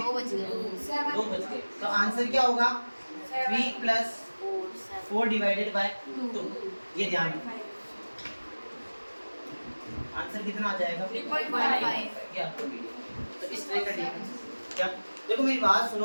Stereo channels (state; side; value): inverted; both; correlation -1.00